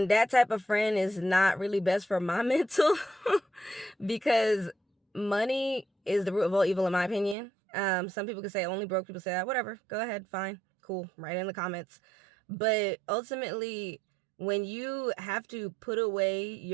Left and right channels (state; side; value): drops out; left; at 7.4 s